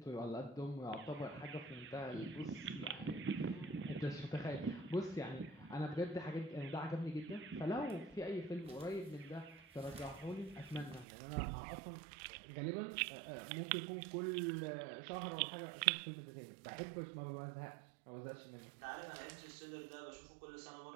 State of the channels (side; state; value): left; drops out; at 11.1 s